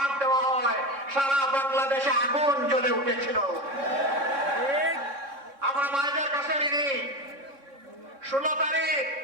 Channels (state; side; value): late; left; 3.6 ms